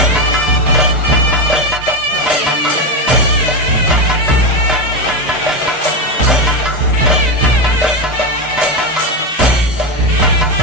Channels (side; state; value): both; normal; correlation 0.12